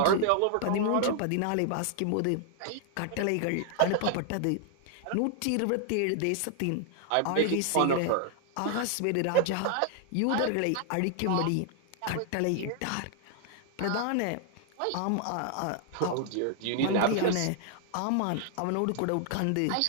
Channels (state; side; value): different; both; correlation 0.00